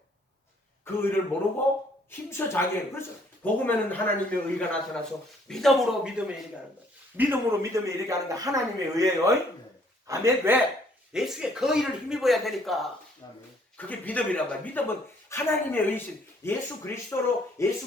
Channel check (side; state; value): both; normal; correlation 0.63